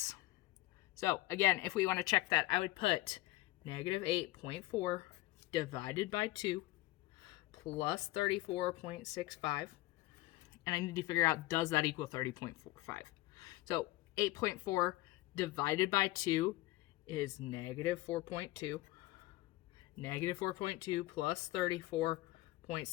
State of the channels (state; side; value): quieter; right; 18.4 dB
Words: So again, if we want to check that, I would put negative 8.4 divided by 2 plus 34.65. And I need to figure out, does that equal 30.45? So 8.4 divided by 2 is negative 4.2. Negative 4.2 plus